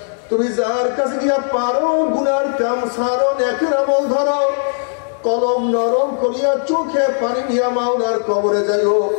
তুমি যার কাছে গিয়া পারো গুনার কাম ছাড়ো, নেকের আমল ধরো, কলম নরম করিয়া চোখে পানি নিয়া মাওলার কবরে যাইও।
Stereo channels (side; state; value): right; silent; digital silence